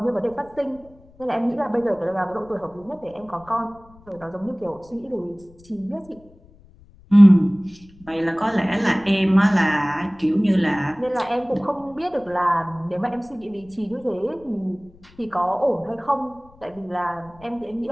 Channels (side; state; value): left; noise; rumble, 26 dB below the sound